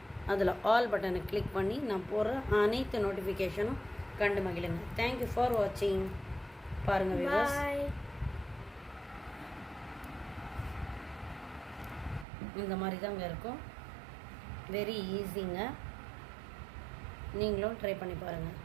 அதில் ஆல் பட்டனை கிளிக் பண்ணி நான் போடுற அனைத்து நோட்டிஃபிகேஷனும் கண்டு மகிழுங்க. தேங்க்யூ ஃபார் வாட்சிங். பாருங்கள் வியூவர்ஸ், இந்த மாதிரி தாங்க இருக்கும். வெரி ஈஸிங்க. நீங்களும் ட்ரை பண்ணி பாருங்கள்.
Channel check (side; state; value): left; drops out; at 12.2 s